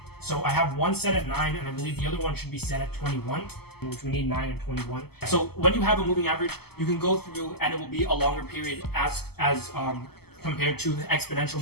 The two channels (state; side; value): late; right; 0.96 ms